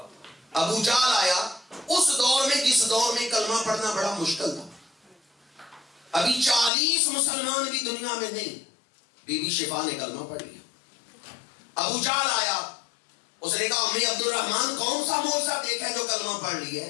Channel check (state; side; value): drops out; right; at 6.7 s